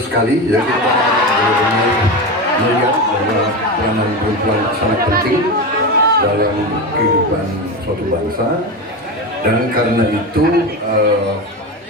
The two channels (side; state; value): both; normal; correlation 0.20